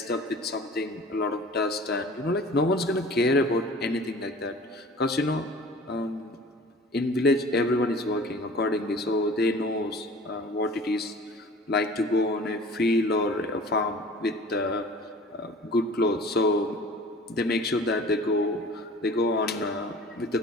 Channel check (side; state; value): both; normal; correlation 0.44